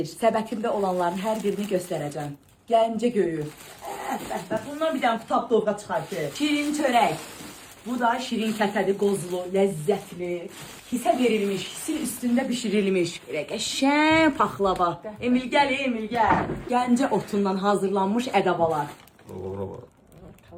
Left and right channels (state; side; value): identical; both; correlation 1.00